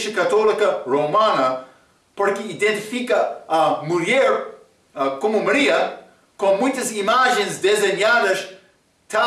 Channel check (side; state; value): both; identical; correlation 1.00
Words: Católica Romana, porque identifica a mulher como Maria, com muitas imagens desenhadas,